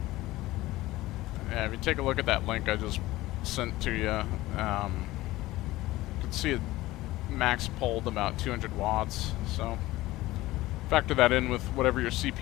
Yeah, if you take a look at that link I just sent to you, you can see it max pulled about 200 watts, so factor that in with whatever your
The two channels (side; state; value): right; quieter; 17.8 dB